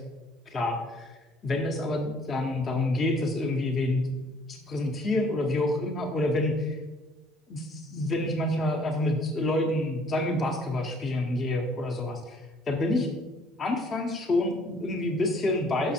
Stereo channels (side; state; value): both; normal; correlation 0.59